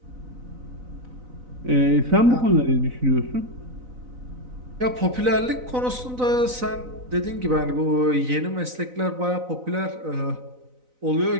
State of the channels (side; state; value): left; late; 4.0 ms